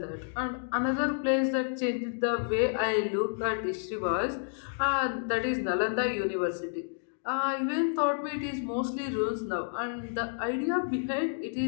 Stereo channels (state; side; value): silent; right; digital silence